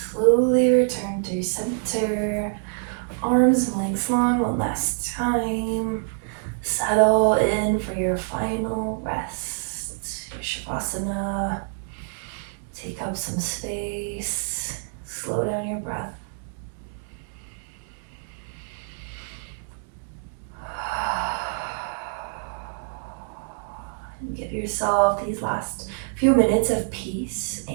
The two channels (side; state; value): left; silent; digital silence